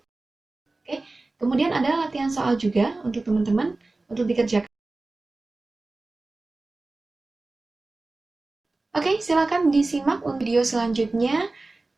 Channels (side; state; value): left; quieter; 3.2 dB